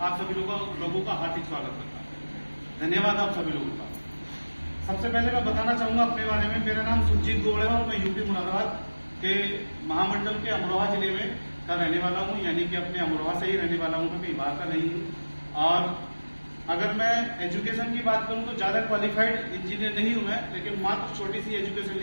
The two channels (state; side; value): inverted; both; correlation -1.00